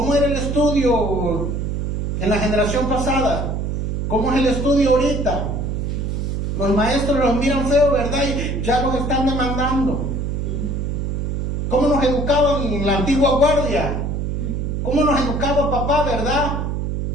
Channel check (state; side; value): noise; right; hum, 2 dB below the sound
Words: era el estudio en la generación pasada? ¿Cómo es el estudio ahorita? Los maestros los miran feo, ¿verdad? Y ya los están demandando. ¿Cómo nos educaban en la antigua guardia? ¿Cómo nos educaba papá, verdad?